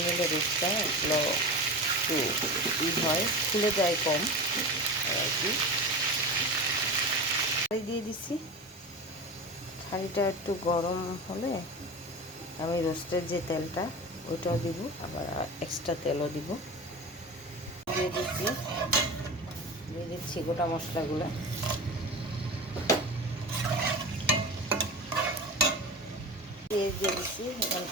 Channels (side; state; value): both; normal; correlation 0.29